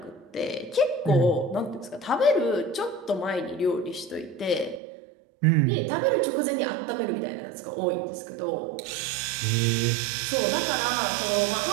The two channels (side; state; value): left; drops out; at 4.8 s